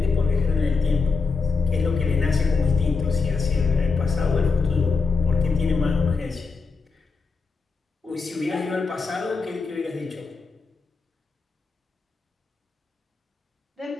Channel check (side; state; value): right; quieter; 4.6 dB